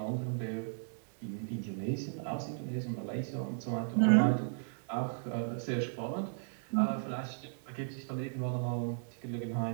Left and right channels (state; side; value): silent; left; 54 dB below the other